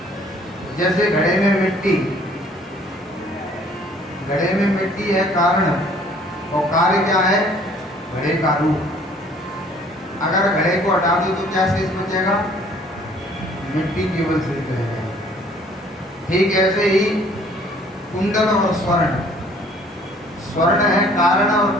जैसे घड़े में मिट्टी है कारण, और कार्य क्या है? घड़े का रूप। अगर घड़े को हटा दो तो क्या शेष बचेगा? मिट्टी केवल शेष रहेगा। ठीक ऐसे ही कुंडल और स्वर्ण है कारण और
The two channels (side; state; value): both; normal; correlation 0.57